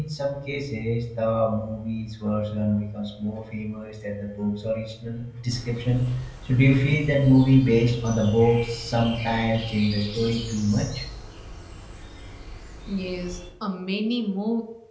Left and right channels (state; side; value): identical; both; correlation 1.00